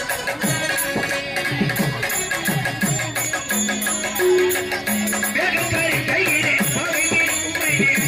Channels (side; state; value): both; identical; correlation 1.00